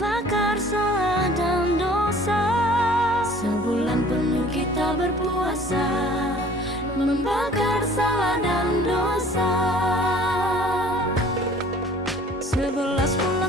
salah dan dosa. Sebulan penuh kita berpuasa, membakar salah dan dosa. 11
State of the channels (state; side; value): normal; both; correlation 0.51